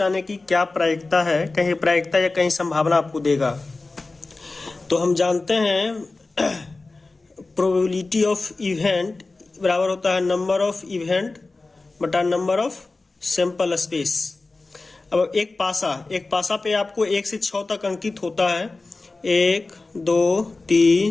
आने की क्या प्रायिकता है। कहीं प्रायिकता या कहीं संभावना आपको देगा। तो हम जानते हैं प्रोबेबिलिटी ऑफ इवेंट बराबर होता है नंबर ऑफ इवेंट बटा नंबर ऑफ सैंपल स्पेस। अब एक पासा पे आपको 1 से 6 तक अंकित होता है। 1 2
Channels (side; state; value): right; quieter; 3.5 dB